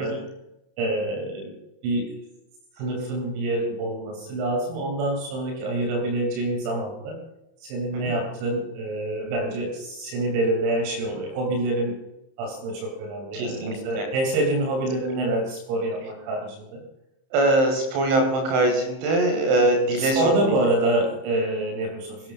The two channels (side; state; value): left; late; 30 ms